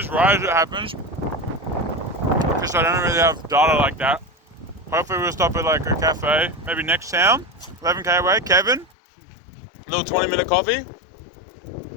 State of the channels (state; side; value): drops out; right; at 8.9 s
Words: right as it happens, because I don't really have data like that. Hopefully we'll stop at like a cafe, maybe next town, 11k away. Kevin, a little 20-minute coffee.